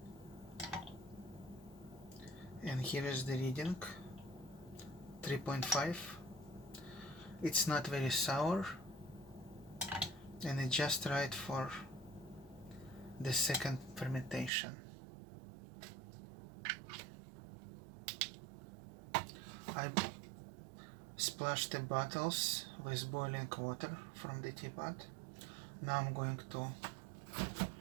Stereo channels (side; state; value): left; drops out; at 14.5 s